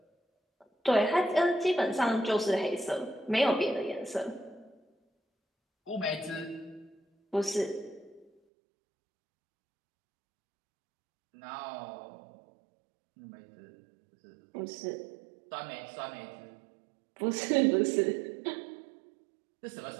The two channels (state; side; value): drops out; left; at 8.3 s